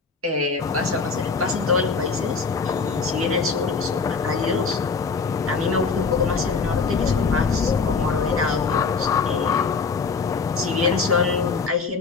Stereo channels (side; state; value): right; quieter; 4.9 dB